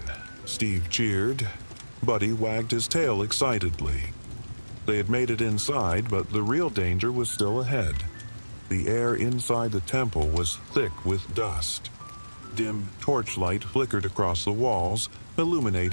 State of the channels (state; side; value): inverted; both; correlation -1.00